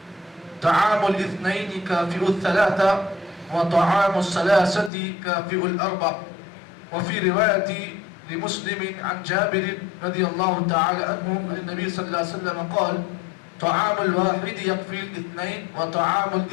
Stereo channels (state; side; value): drops out; right; at 4.9 s